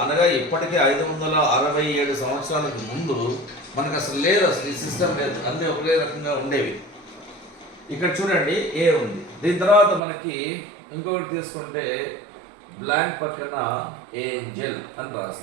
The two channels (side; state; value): left; drops out; at 10.0 s